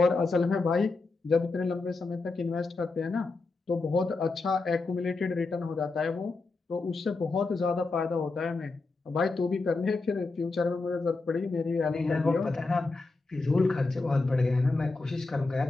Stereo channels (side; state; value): right; quieter; 3.7 dB